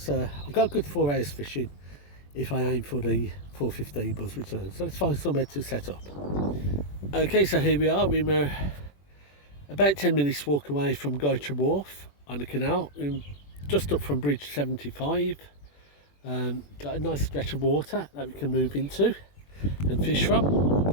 I've got a good 4 hours fishing if I aim for the 4:15 buzz return. So let's find somewhere to set up. Okay, so here we are. We're about 10 minutes walk away from Goytre Wharf on the canal, just up from bridge 75. Got a nice stretch of water that we can move into and fish from.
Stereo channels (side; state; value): right; late; 21 ms